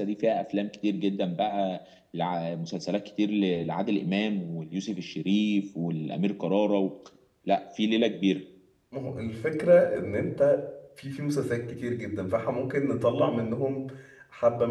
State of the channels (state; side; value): identical; both; correlation 1.00